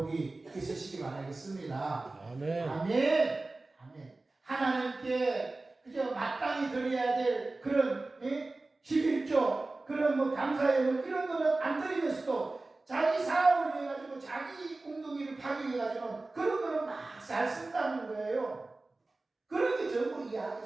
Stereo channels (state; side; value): quieter; left; 3.2 dB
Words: 있으시기 바라겠습니다. 아멘. 아멘. 아멘. 하나님께 그저 마땅히 드려야 될 그런 11조 그런 감사의 이런 거는 안 드리면서도 자기 사업을 위해 가지고 자기 웅덩이를 파기 위해가지고는 그런 거는 막 잘 쓴다는 거예요. 그런 게 전부 이 악에